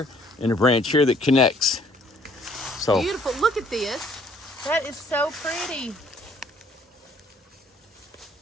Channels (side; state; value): both; normal; correlation 0.61